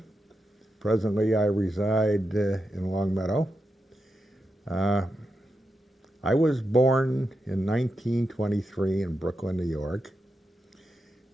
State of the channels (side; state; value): both; normal; correlation 0.87